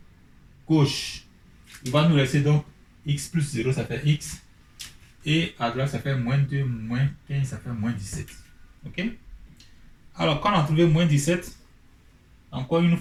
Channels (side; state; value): both; identical; correlation 1.00